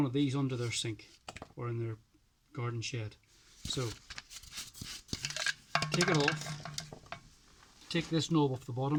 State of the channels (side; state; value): both; identical; correlation 1.00